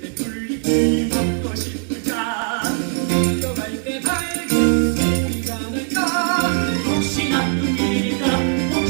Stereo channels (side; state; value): left; silent; 58 dB below the other